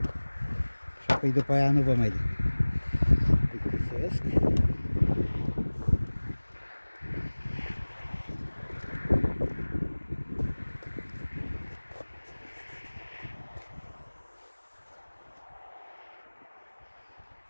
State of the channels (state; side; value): inverted; both; correlation -1.00